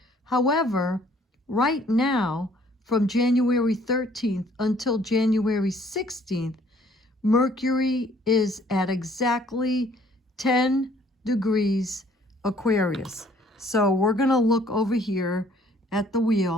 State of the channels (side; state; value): both; normal; correlation 0.60